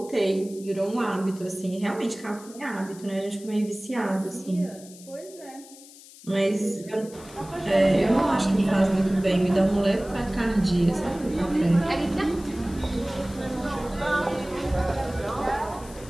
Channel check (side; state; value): left; noise; hiss, 20 dB below the sound